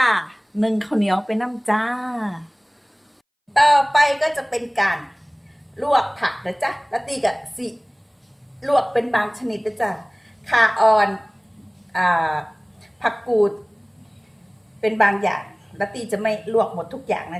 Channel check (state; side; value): identical; both; correlation 1.00